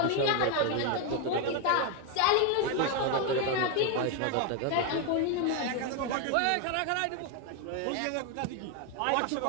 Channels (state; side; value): different; both; correlation 0.02